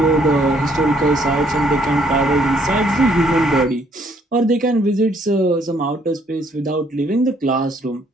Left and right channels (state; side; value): normal; both; correlation 0.66